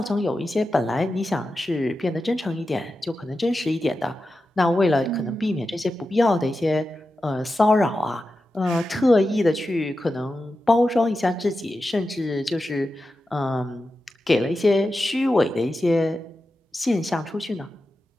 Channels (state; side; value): normal; both; correlation 0.91